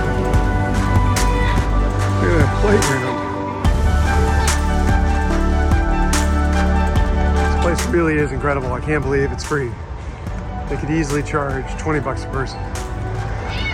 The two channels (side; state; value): both; identical; correlation 1.00